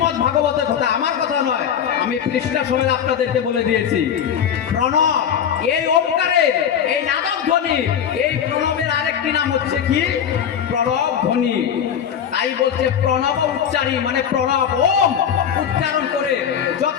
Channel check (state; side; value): quieter; right; 8.5 dB